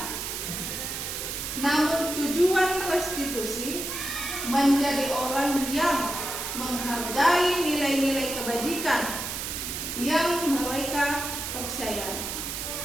Namun tujuan restitusi menjadi orang yang menghargai nilai-nilai kebajikan yang mereka percayai.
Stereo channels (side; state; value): right; noise; hiss, 4 dB below the sound